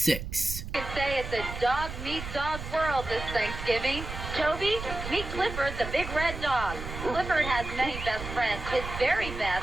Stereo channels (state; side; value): noise; right; rumble, 8 dB below the sound